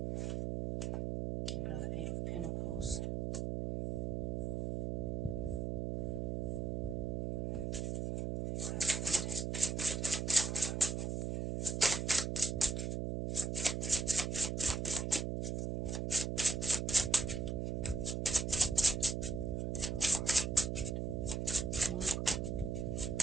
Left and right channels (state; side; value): noise; right; hum, 2 dB below the sound